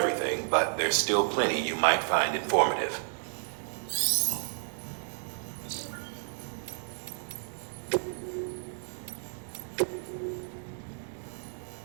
but there's still plenty you might find informative.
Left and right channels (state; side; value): silent; left; digital silence